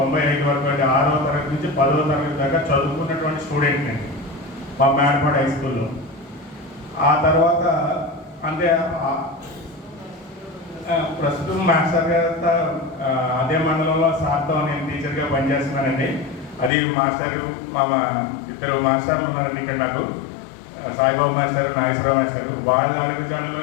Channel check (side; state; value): right; drops out; at 16.7 s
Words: వరకు అంటే 6వ తరగతి నుంచి 10వ తరగతి దాకా చదువుకున్నటువంటి స్టూడెంట్ నేను మా మేడపాడు హై స్కూల్లో. ఆ తర్వాత అంటే ప్రస్తుతం మాస్టర్ గారు అదే మండలంలో సార్తో నేను టీచర్గా పనిచేస్తున్నానండి. అది మాస్టర్ మా ఇద్దరు మాస్టర్లు ఉన్నారండి ఇక్కడ నాకు, సాయిబాబు మాస్టర్, నాగేశ్వరరావు మాస్టర్. వాళ్ళ